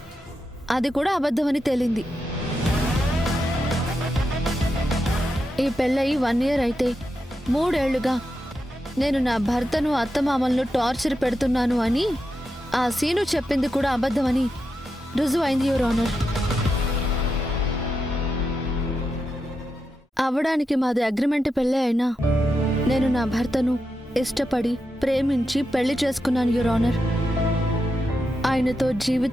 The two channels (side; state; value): both; normal; correlation 0.87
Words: అది కూడా అబద్ధమని తేలింది. ఈ పెళ్ళయి 1 year అయితే 3 ఏళ్లుగా నేను నా భర్తను అత్తమామలను టార్చర్ పెడుతున్నాను అని ఆ సీను చెప్పింది కూడా అబద్ధమని రుజువైంది యువర్ ఆనర్. అవడానికి మాది అగ్రిమెంట్ పెళ్ళే అయినా నేను నా భర్తను ఇష్టపడి ప్రేమించి పెళ్లి చేసుకున్నాను యువర్ ఆనర్. ఆయనతో